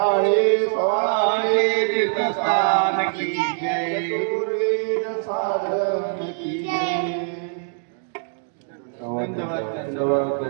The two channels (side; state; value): left; silent; digital silence